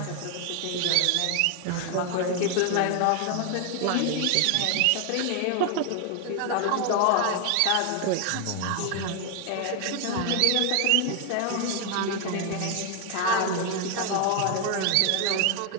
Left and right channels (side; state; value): both; different; correlation 0.01